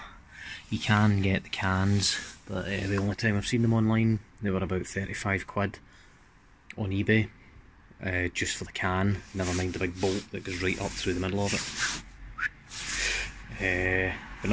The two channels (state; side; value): identical; both; correlation 1.00